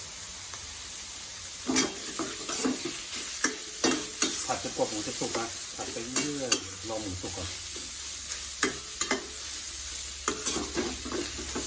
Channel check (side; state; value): both; identical; correlation 1.00